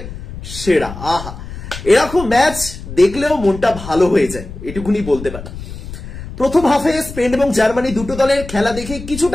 সেরা। আহা, এরকম ম্যাচ দেখলেও মনটা ভালো হয়ে যায়, এটুকুনি বলতে পারি। প্রথম হাফে স্পেন এবং জার্মানি দুটো দলের খেলা দেখে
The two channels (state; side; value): noise; left; rumble, 11 dB below the sound